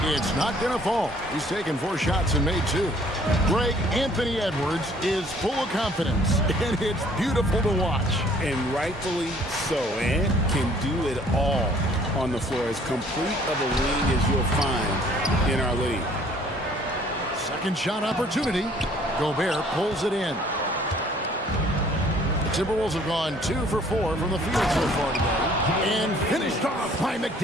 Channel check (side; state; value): both; normal; correlation 0.58